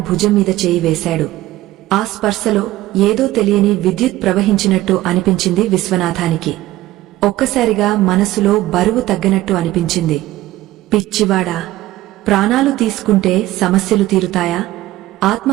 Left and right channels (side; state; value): left; quieter; 16.2 dB